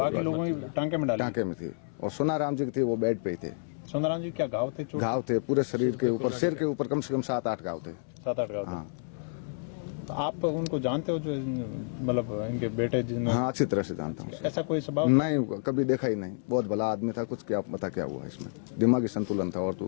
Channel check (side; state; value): right; silent; 58 dB below the other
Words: लोगों ने टांके में डाली? टांके में थी, और सोनाराम जी की थी वो बेड पे ही थे। सोनाराम जी क्या घाव थे? घाव थे पूरे शरीर के ऊपर, सिर के ऊपर कम से कम 7-8 घाव थे। 7-8 घाव? हाँ। तो आप उनको जानते हो, जो मतलब इनके बेटे जिन्होंने? हाँ, अच्छी तरह से जानता हूँ। ऐसा कोई स्वभाव नहीं, कभी देखा ही नहीं, बहुत भला आदमी था। कुछ क्या पता क्या हुआ इसमें, दिमागी संतुलन था और तो